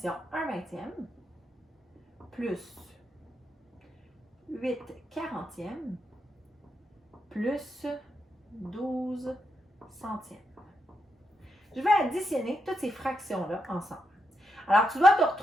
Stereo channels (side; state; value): both; normal; correlation 0.83